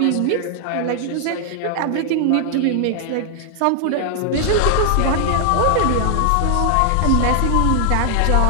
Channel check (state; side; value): different; both; correlation 0.00